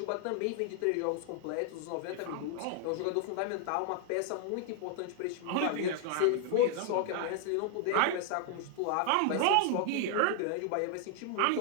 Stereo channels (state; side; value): different; both; correlation 0.00